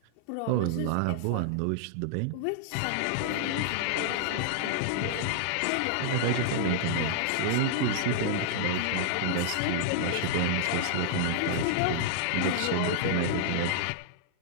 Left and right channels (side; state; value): both; different; correlation -0.01